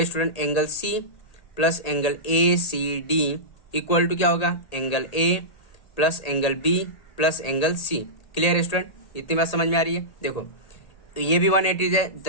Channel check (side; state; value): right; late; 1.8 ms